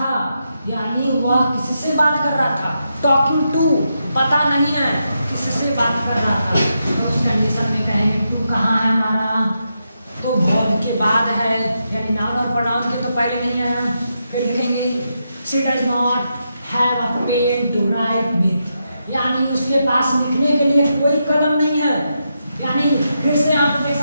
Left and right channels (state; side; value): inverted; both; correlation -0.84